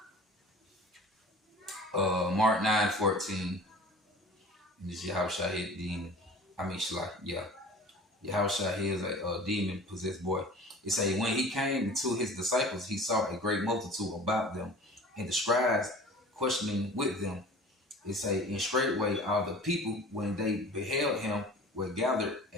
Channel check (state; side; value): normal; both; correlation 0.43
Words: Mark 9:14, and this Yahushua hit demon. I mean, Shalak, yeah. Yahushua heals a demon possessed boy. It say when he came to his disciples, he saw a great multitude about them, and the scribes questioning with them. It say, in straightway all the people, when they beheld him, were gathered